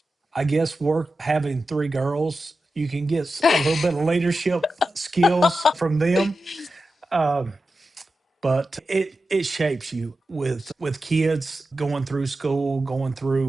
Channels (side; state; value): both; normal; correlation 0.91